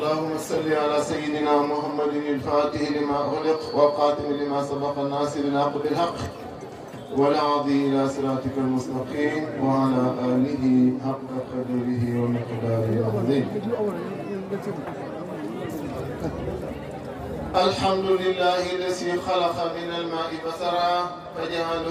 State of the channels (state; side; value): identical; both; correlation 1.00